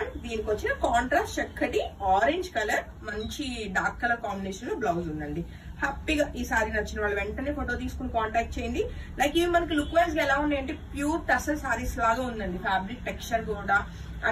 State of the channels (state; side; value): identical; both; correlation 1.00